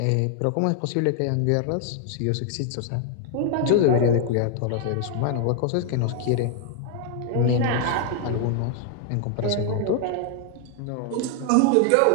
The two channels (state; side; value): different; both; correlation 0.00